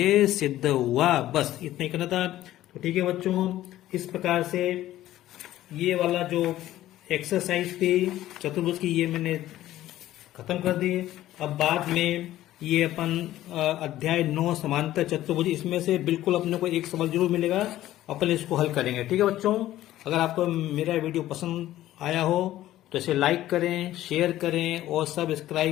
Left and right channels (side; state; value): right; quieter; 14.2 dB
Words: सिद्ध हुआ। बस इतना ही करना था। तो ठीक है बच्चों, इस प्रकार से ये वाला जो एक्सरसाइज थी चतुर्भुज की ये मैंने खत्म कर दी। अब बाद में ये अपन अध्याय 9 समांतर चतुर्भुज, इसमें से बिल्कुल अपने को एक सवाल जरूर मिलेगा, अपन इसको हल करेंगे। ठीक है बच्चों, अगर आपको मेरा वीडियो पसंद आया हो तो इसे लाइक करें, शेयर करें और